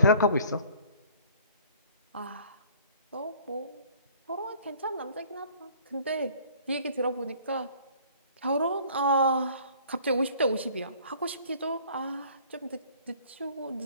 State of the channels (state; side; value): inverted; both; correlation -0.54